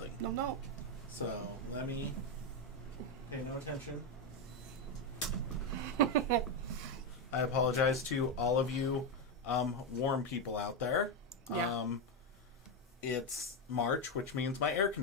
No. So let me pay no attention. I apologize to all of you warm people out there. Yeah. It's March, which means my air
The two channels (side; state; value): both; normal; correlation 0.07